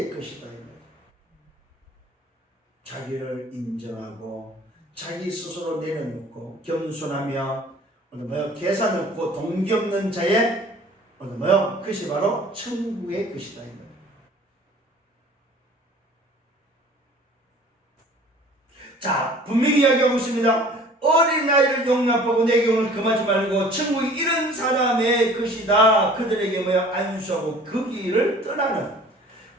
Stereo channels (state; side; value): normal; both; correlation 0.49